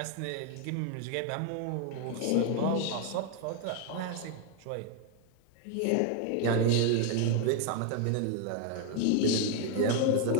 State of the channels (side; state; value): both; different; correlation 0.01